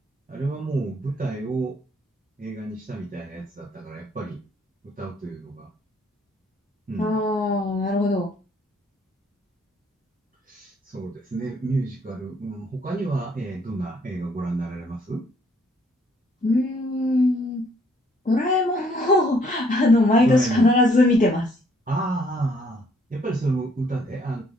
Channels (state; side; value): normal; both; correlation 0.65